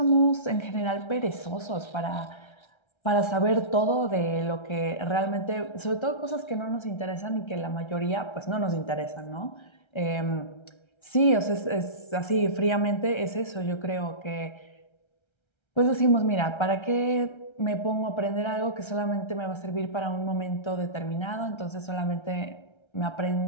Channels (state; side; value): late; right; 1.3 ms